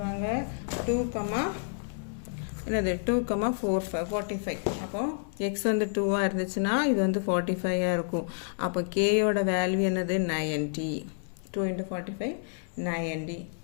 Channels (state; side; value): silent; right; 58 dB below the other